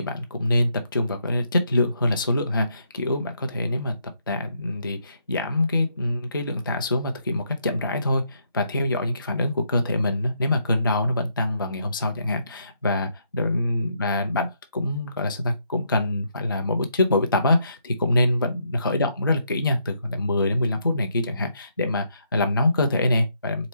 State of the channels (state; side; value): inverted; both; correlation -0.75